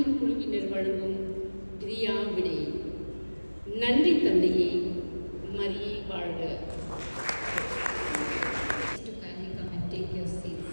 குழுவினர் வழங்கும் பிரியா விடை. நன்றி தந்தையே, மரியே வாழ்க.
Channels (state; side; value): inverted; both; correlation -1.00